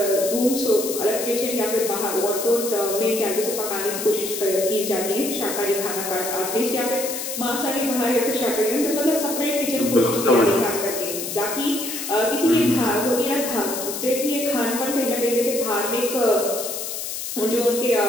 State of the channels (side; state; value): left; noise; hiss, 5 dB below the sound